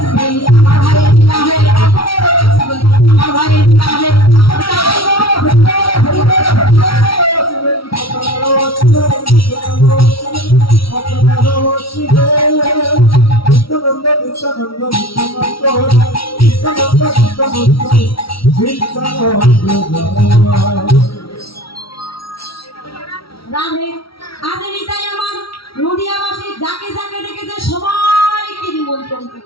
আমার ভাইয়ের বিবাহে আপনারা আসবেন, আমার ভাইয়ের বিবাহে রাধে আজ নিতাই আমার নদিয়াবাসী যাকে যাকে দেখেছে সবাইকে নিমন্ত্রণ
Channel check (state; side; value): late; right; 0.75 ms